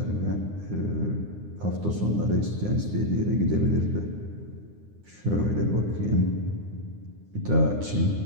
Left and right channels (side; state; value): left; late; 9.7 ms